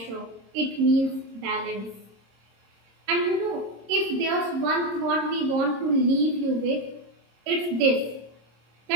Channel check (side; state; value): left; late; 26 ms